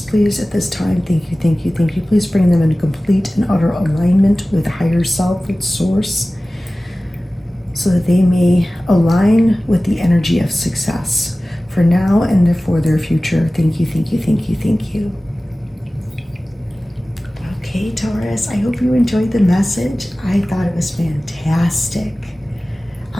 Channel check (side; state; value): both; normal; correlation 0.97